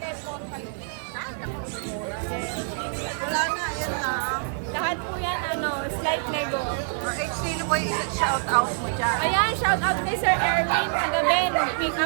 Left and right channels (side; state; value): left; silent; digital silence